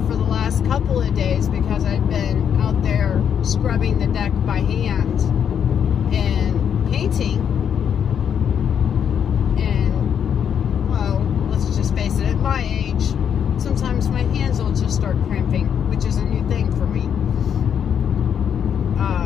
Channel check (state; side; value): quieter; right; 8.2 dB